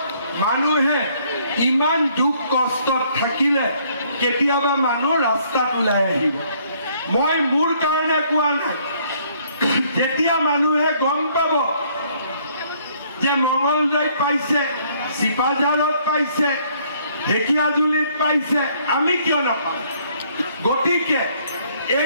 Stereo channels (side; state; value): both; inverted; correlation -0.64